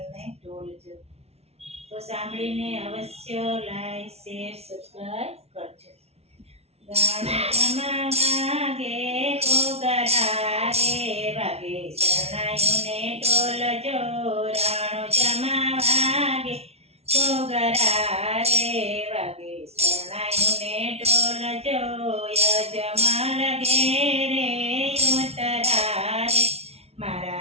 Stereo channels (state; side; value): late; left; 0.31 ms